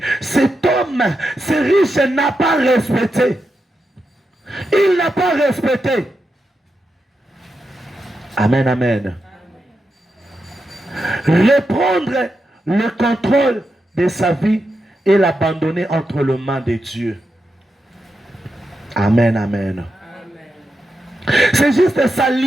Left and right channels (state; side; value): normal; both; correlation 0.87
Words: Cet homme, ce riche n'a pas respecté. Il n'a pas respecté. Amen, amen. Reprendre le contrôle de sa vie et l'abandonner entre les mains de Dieu. Amen, amen. C'est juste de